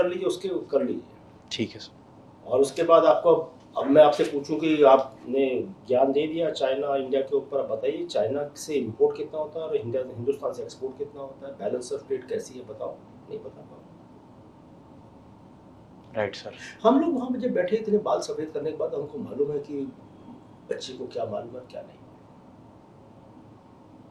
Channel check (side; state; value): both; identical; correlation 1.00